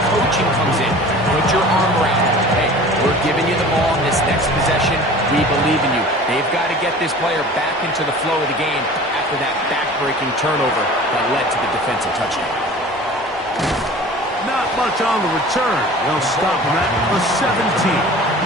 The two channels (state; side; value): normal; both; correlation 0.42